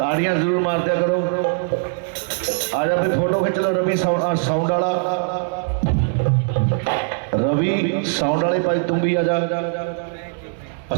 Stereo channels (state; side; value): silent; left; digital silence